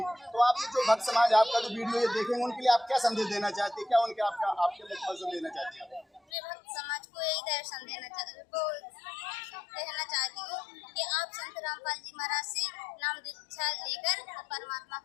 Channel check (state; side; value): drops out; right; at 6.2 s